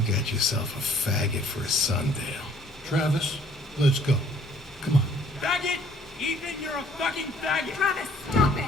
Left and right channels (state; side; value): normal; both; correlation 0.59